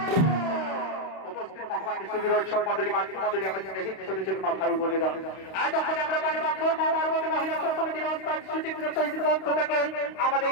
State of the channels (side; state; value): right; late; 32 ms